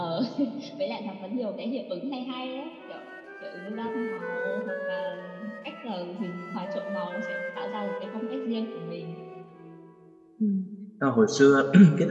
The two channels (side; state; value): both; identical; correlation 1.00